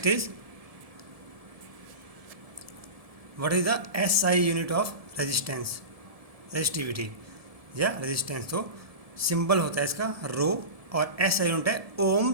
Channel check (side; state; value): left; late; 1.7 ms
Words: is, what is the SI unit of resistance, resistivity या resistance. तो symbol होता है इसका रो, और SI यूनिट है